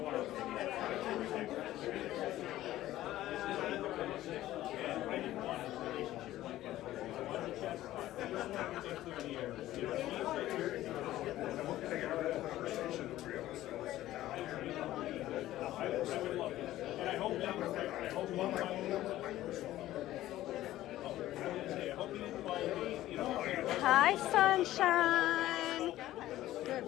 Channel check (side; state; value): right; quieter; 14.7 dB